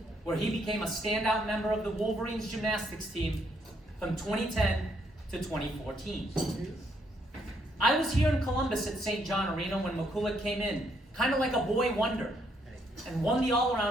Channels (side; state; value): both; normal; correlation 0.72